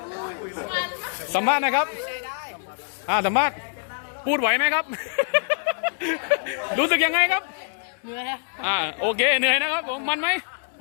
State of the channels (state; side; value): silent; right; 62 dB below the other